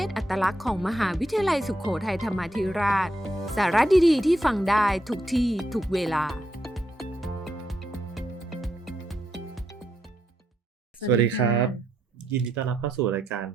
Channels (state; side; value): normal; both; correlation 0.80